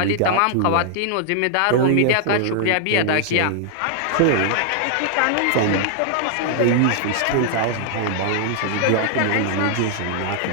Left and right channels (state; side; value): different; both; correlation 0.00